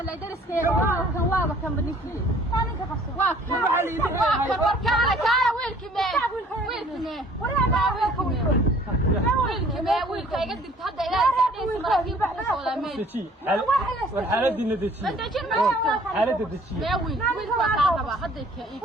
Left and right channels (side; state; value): both; normal; correlation 0.55